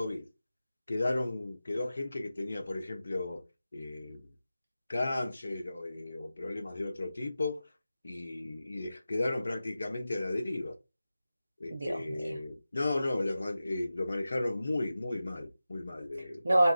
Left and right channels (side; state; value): both; inverted; correlation -0.94